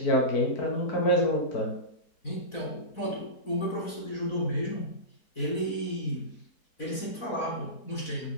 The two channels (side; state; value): right; late; 4.1 ms